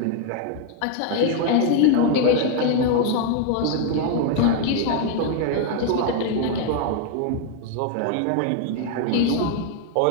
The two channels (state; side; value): different; both; correlation 0.01